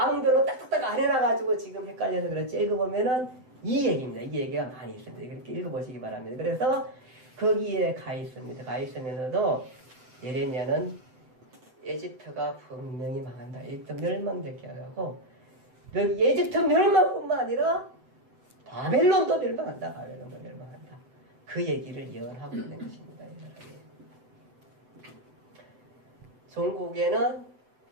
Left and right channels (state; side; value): late; left; 7.9 ms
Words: 딱딱딱 안 해놔가지고 지금 헷갈려서 그렇지 읽어보면은 이 얘기입니다. 이 얘기가 많이 있습니다. 이렇게 읽어보시기 바랍니다. 그래서 거기에 가 있습니다. 가 있으면서도 예레미야는 에집트가 분명히 망한다. 에집트 멸망되게 하고 에집트 멸망뿐만 아니라 바벨론도 멸망한다. 바벨론도 멸망한다. 그 얘기를 예언하고 있는 것입니다. 종국에는